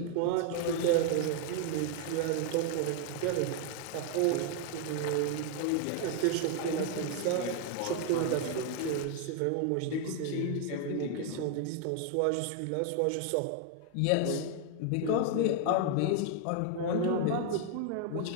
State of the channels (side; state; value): both; different; correlation 0.00